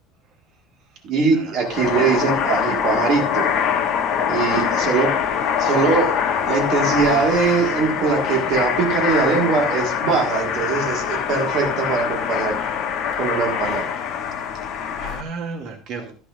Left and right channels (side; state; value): both; normal; correlation 0.38